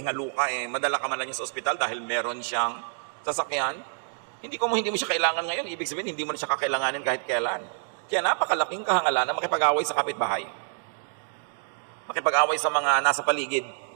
ka madala ka man lang niya sa ospital dahil meron siyang sasakyan. Hindi mo siya kailangan ngayon, ibig sabihin, hindi mo na siya kakailanganin kahit kailan. Kaya napakalaking kahangalan na makipag-away sa kapitbahay. Makipag-away sa mga nasa paligid.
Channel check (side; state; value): left; silent; digital silence